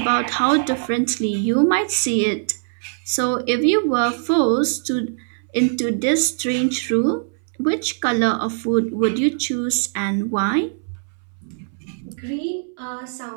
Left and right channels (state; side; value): silent; left; 64 dB below the other